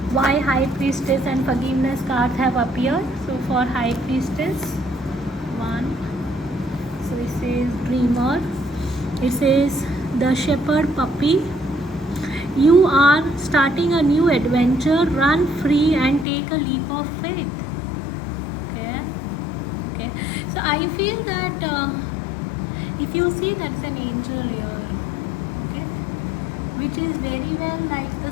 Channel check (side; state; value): right; drops out; at 16.2 s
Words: why High Priestess and Forgiveness cards have appeared. So for High Priestess, 1. So it says Dreamer. It says the Shepherd Puppy. You are starting a new adventure. Run free and take a leap of faith. Okay. So I feel that if you see, that's an angel here. Which is very well like the